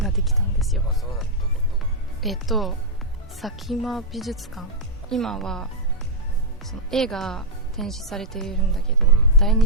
ができたんですよ。佐喜眞美術館、今はその絵が展示されているんだけど、第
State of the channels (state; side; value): normal; both; correlation -0.05